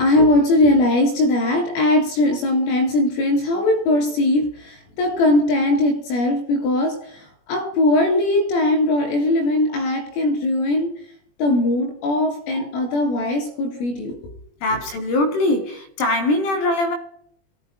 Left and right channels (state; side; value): late; right; 21 ms